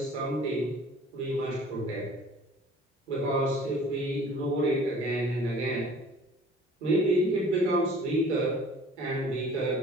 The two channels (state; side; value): normal; both; correlation 0.49